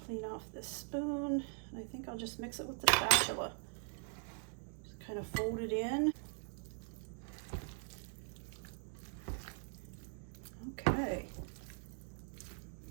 clean off this spoon. And I think I'll just mix it with the spatula. Just kind of fold it in. Okay.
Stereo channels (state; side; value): silent; left; 50 dB below the other